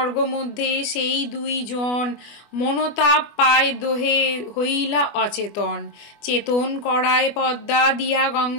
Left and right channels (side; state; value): right; late; 24 ms